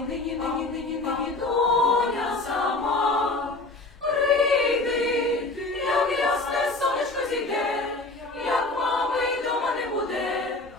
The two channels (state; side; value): quieter; right; 3.0 dB